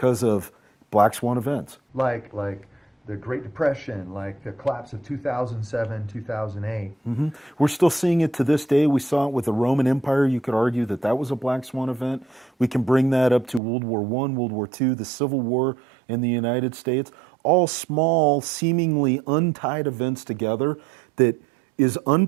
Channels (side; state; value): left; drops out; at 13.6 s